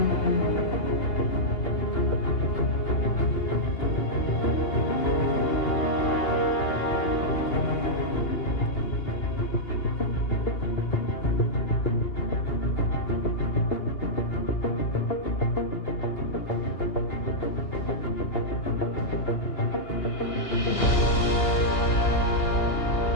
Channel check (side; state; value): right; late; 2.8 ms